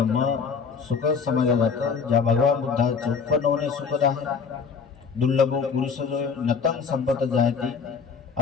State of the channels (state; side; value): quieter; right; 5.8 dB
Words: सुख समजला जातं, ज्या भगवान बुद्धाचे उत्पन्न होणे सुखद आहे. दुर्लभो पुरुष जो नतंग संपत जायते